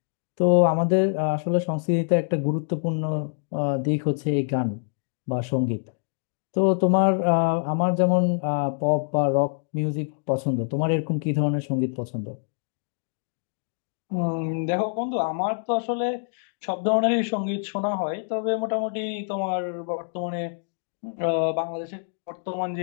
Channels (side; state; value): right; silent; digital silence